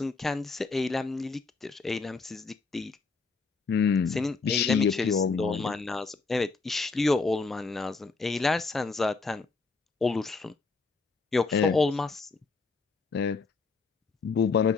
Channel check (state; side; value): quieter; right; 4.3 dB